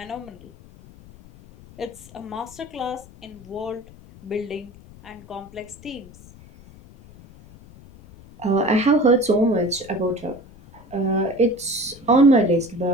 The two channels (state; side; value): noise; left; rumble, 21 dB below the sound